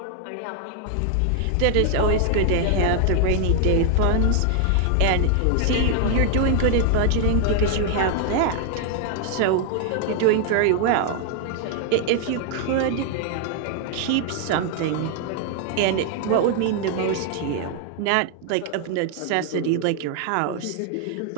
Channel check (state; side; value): different; both; correlation 0.00